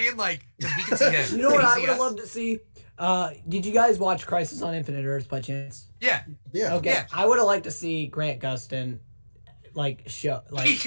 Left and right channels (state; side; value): inverted; both; correlation -1.00